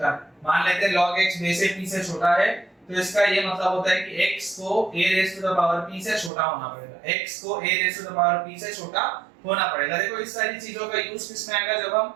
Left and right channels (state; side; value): drops out; left; at 6.3 s